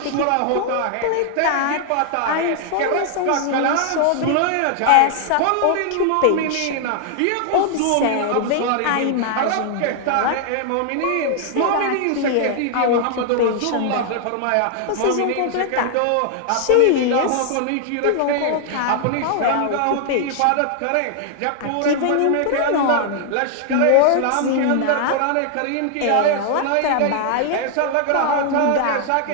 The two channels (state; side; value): different; both; correlation 0.00